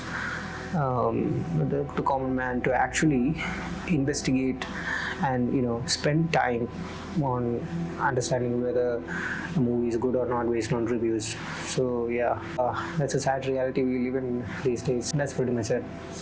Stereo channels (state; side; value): identical; both; correlation 1.00